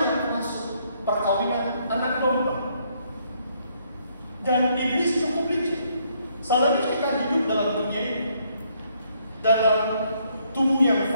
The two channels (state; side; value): inverted; both; correlation -0.70